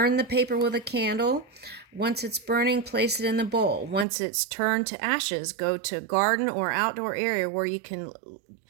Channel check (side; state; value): left; drops out; at 4.0 s